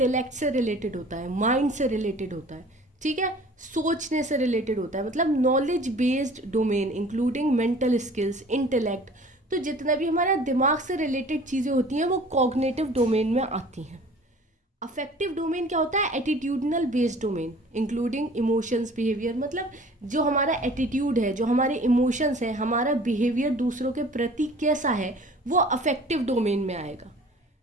से रिलेटेड होता है, माइंड से रिलेटेड होता है, ठीक है, सोचने से रिलेटेड होता है, मतलब knowledge based domain including mental skills, intellect. तो जितना भी हमारा दिमाग से रिलेटेड चीज़ें होती हैं वो कॉग्निटिव डोमेन में आती हैं. अफेक्टिव डोमेन क्या होता है? Attitudinal based domain including emotions, behaviour, मतलब जो हमारा एटीट्यूड है, जो हमारे इमोशंस हैं, हमारा बिहेवियर दूसरों के प्रति कैसा है, वो अफेक्टिव डोमेन में आएगा.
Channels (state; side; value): normal; both; correlation 0.48